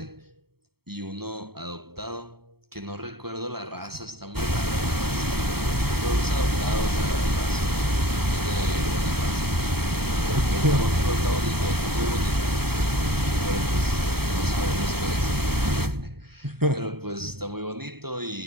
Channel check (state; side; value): late; left; 0.96 ms